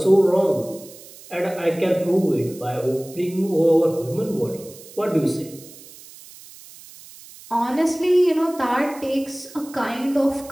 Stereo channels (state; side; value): noise; right; hiss, 19 dB below the sound